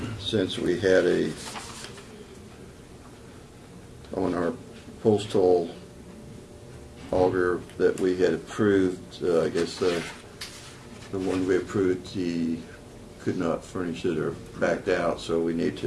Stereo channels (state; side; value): identical; both; correlation 1.00